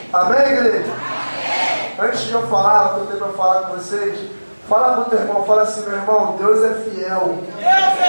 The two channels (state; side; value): inverted; both; correlation -1.00